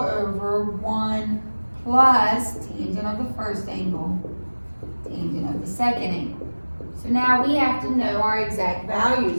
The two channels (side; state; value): both; inverted; correlation -1.00